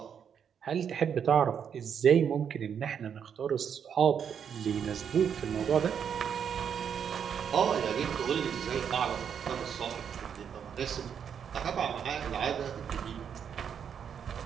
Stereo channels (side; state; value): left; quieter; 7.8 dB